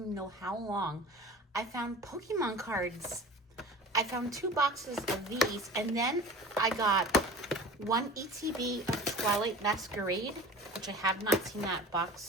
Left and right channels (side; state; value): both; normal; correlation 0.39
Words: know how long. I found Pokemon cards. I found 2 boxes of these, and then I got 1 ETB of Twilight Masquerade, which I have not seen that